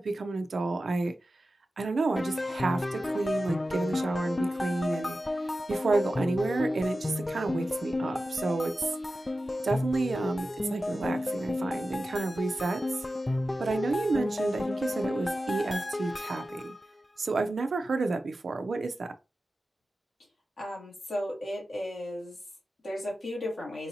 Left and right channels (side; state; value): both; normal; correlation 0.93